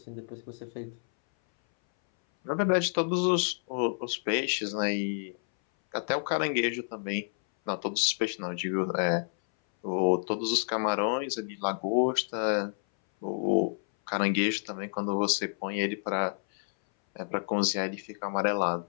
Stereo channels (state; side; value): silent; right; 58 dB below the other